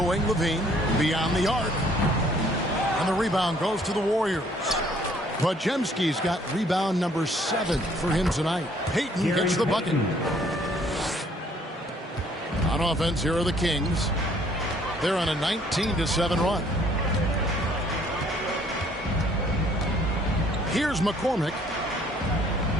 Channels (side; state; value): both; normal; correlation 0.61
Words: wing, Levine, beyond the arc. And the rebound goes to the Warriors. Pajemski's got rebound number 7 for him tonight. Payton gets the bucket. On offense, here are the Kings. They're on a 19-7 run. Here's McCormick.